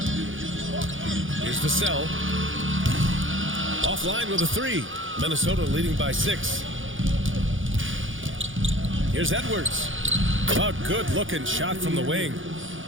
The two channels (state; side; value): late; left; 0.57 ms